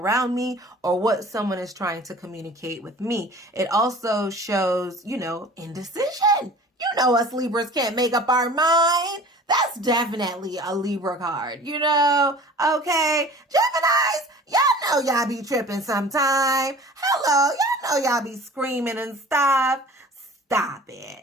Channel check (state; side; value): normal; both; correlation 0.44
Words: me, or what someone is trying to communicate with me. It also shows, indecision. You know us Libras can't make up our mind. That's definitely a Libra card, Okay. Geminis, y'all know y'all be tripping sometime. Hello, y'all know y'all be screaming and stuff. Stop